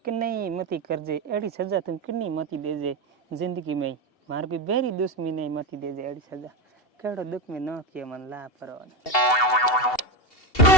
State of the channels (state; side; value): late; right; 2.7 ms